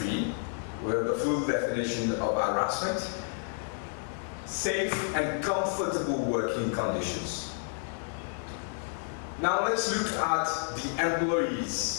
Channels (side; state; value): right; silent; 57 dB below the other